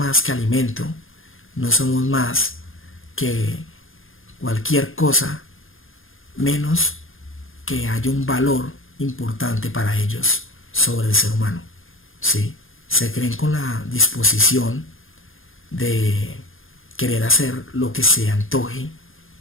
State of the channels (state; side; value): late; right; 0.59 ms